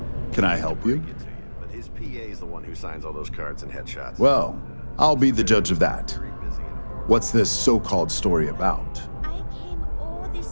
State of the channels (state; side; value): inverted; both; correlation -1.00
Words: Can I help you? But his PA's the one who signs all those cards and headshots. Well, I'll be the judge of that. What's this so-called story about? I came all